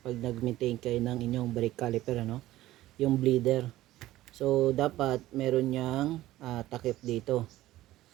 pag nag-maintain kayo ng inyong brake caliper, ano, yung bleeder. So dapat meron niyang takip dito.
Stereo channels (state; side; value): quieter; left; 15.6 dB